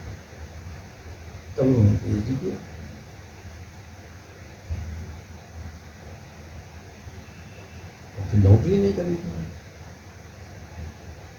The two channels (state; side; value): identical; both; correlation 1.00